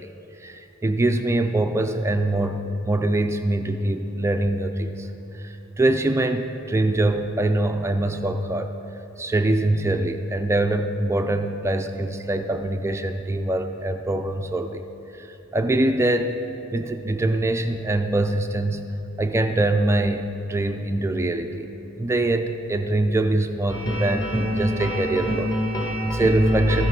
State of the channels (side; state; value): both; normal; correlation 0.79